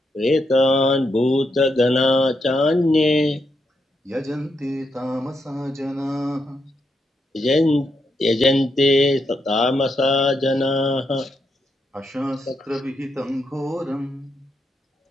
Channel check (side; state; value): both; normal; correlation 0.82